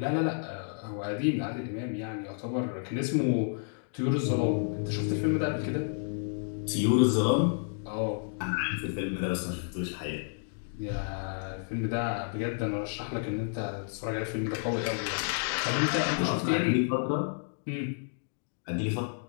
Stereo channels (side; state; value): right; silent; digital silence